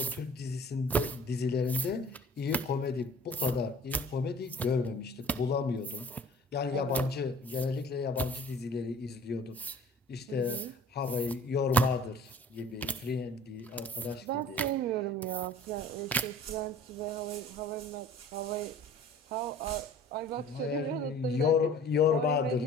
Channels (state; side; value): normal; both; correlation 0.48